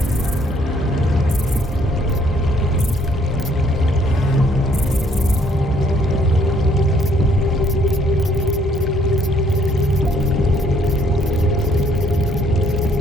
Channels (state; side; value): normal; both; correlation 0.66